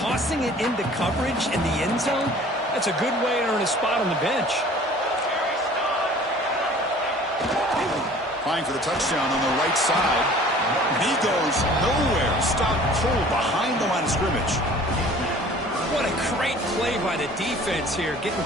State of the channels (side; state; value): both; normal; correlation 0.49